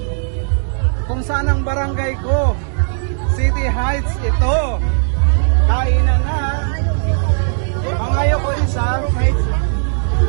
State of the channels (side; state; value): left; silent; 68 dB below the other